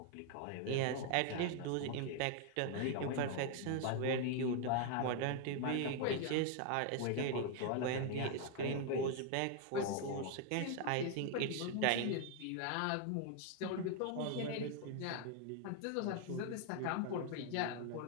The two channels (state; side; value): different; both; correlation 0.00